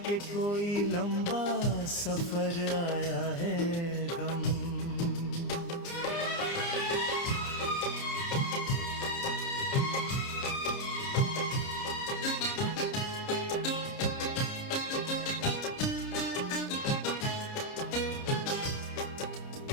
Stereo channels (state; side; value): late; right; 29 ms